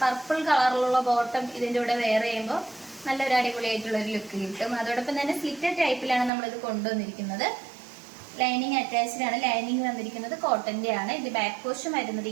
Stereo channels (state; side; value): drops out; left; at 6.3 s